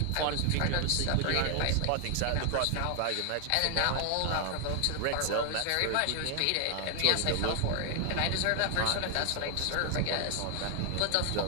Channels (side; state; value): both; different; correlation 0.00